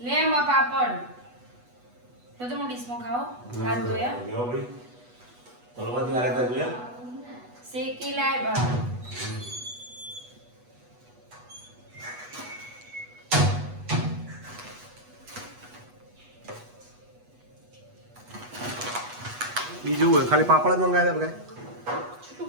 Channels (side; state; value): left; late; 8.2 ms